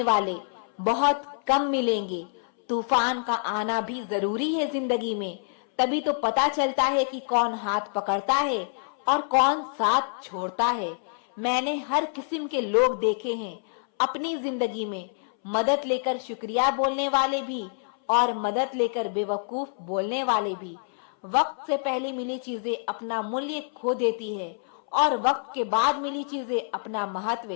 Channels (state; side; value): silent; right; 60 dB below the other